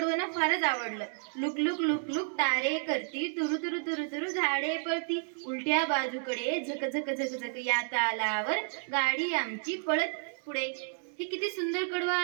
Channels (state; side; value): silent; left; digital silence